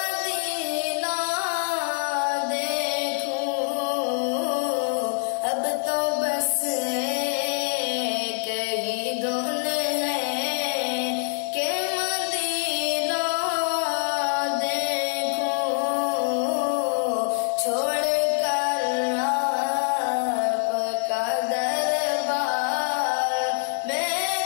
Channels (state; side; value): silent; right; digital silence